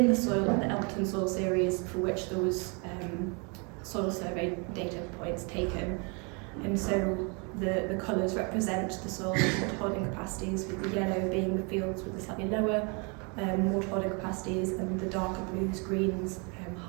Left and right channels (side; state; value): left; quieter; 33.4 dB